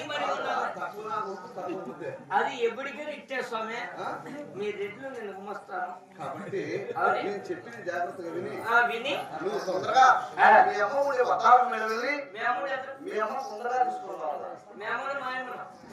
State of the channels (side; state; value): both; identical; correlation 1.00